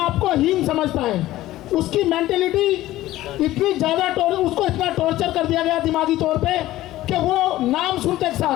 को हीन समझता है। उसकी मेंटेलिटी इतनी ज़्यादा उसको इतना टॉर्चर कर दिया गया दिमागी तौर पे कि वो नाम सुनते के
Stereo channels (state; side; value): quieter; right; 15.6 dB